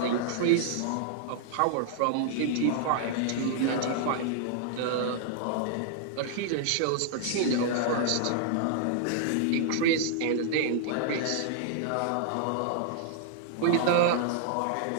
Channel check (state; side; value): different; both; correlation -0.01